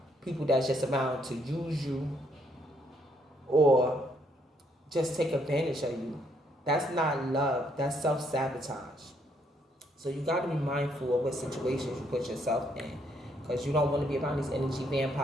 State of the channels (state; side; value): normal; both; correlation 0.71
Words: people that's just around to use you or just take advantage of you. That's not love. That's self-sabotage. So you got to be mindful of what situations you put yourself in. Because you don't want to be around these energy